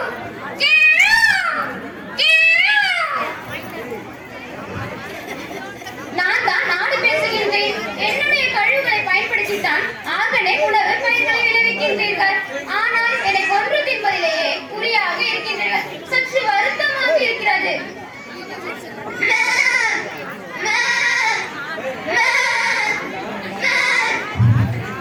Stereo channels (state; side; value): identical; both; correlation 1.00